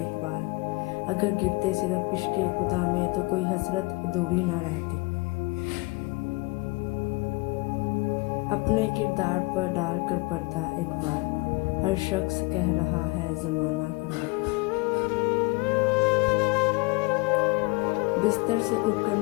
बार। अगर गिरते सिर्फ इश्क़ खुदा में तो कोई हसरत अधूरी ना रहती। अपने किरदार पर डाल कर पर्दा एक बार, हर शख्स कह रहा है ज़माना ख़राब है। बिस्तर से उठकर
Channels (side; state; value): right; quieter; 25.4 dB